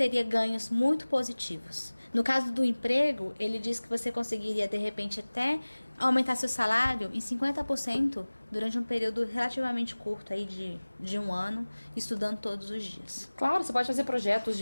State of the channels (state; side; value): inverted; both; correlation -1.00